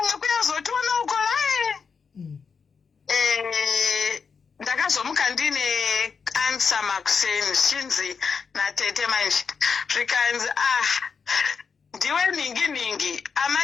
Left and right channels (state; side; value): quieter; right; 5.7 dB